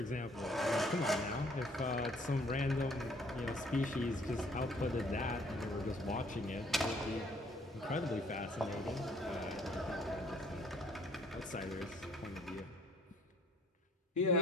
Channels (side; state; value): both; normal; correlation 0.60